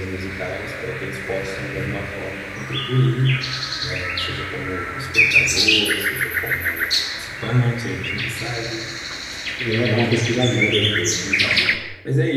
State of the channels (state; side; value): identical; both; correlation 1.00